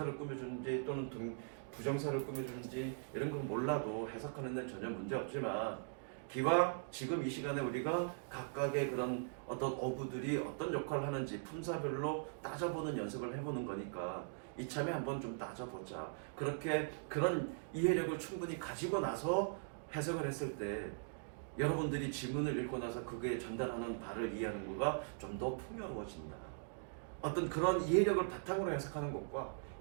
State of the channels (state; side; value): silent; left; digital silence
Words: 꾸며주는지 또는 부정사를 꾸며주는지 이런 건 몰라도 해석하는 데 전혀 문제 없지만 기왕 지금 이 시간에 우리가 각각의 그런 어떤 어구들이 어떤 역할을 하는지 품사별로 따져보는 연습을 해보는 거니까 이참에 한번 좀 따져보자. 그렇게 그런 이해력을 충분히 가지고 나서 해석을 했을 때 여러분들이 지문을 읽고 나서 그게 전달하는 바를 이해하는 거가 좀 더 풍요로워진다. 어떤 그런 이해력을 바탕으로 해석하는 것과